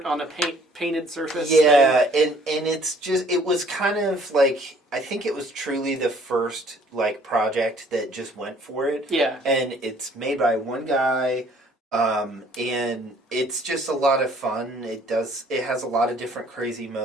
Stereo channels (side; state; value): both; normal; correlation 0.58